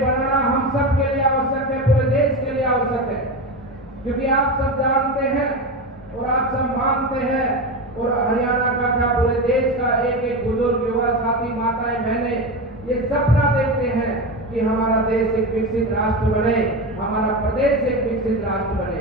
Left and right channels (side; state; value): both; normal; correlation 0.20